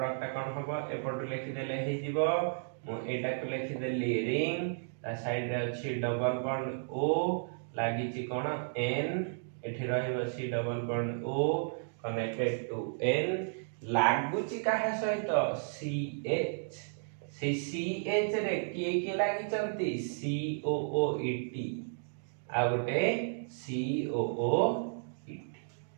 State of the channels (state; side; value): silent; left; digital silence